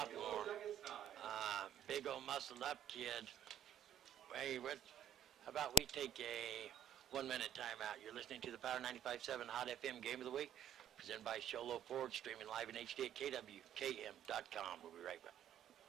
Big old muscled up kid. Hey, how about we take a 1-minute timeout? You're listening to the Power 95.7 Hot FM Game of the Week, presented by Sholo Ford, streaming live in HD at KWKM.com. We'll be right back.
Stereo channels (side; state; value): left; quieter; 6.7 dB